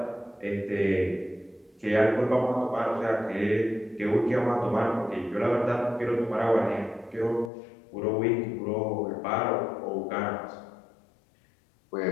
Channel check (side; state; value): right; drops out; at 7.5 s